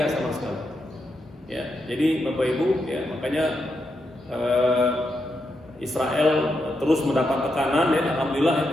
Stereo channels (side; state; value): both; normal; correlation 0.83